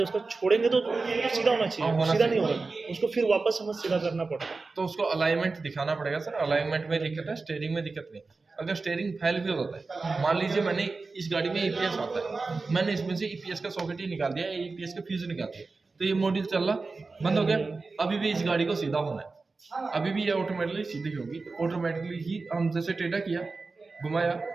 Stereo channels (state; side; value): quieter; left; 3.9 dB